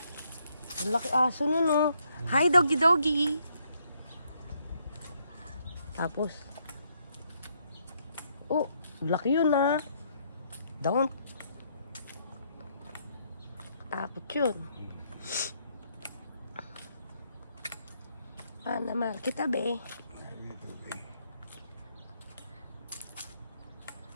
Ang laki aso nun, oh. Hi, doggy doggy. Tapos, oh, laki yun, ah. Don't. Tapos yun. Paano mahal kita, be?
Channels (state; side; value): inverted; both; correlation -0.73